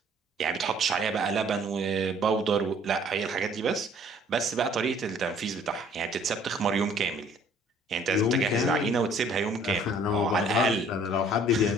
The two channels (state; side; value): normal; both; correlation 0.57